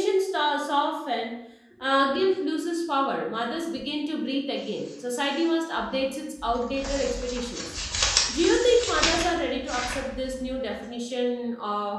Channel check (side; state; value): both; identical; correlation 1.00